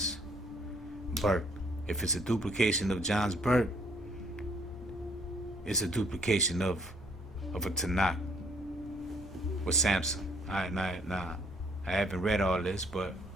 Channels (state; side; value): normal; both; correlation 0.64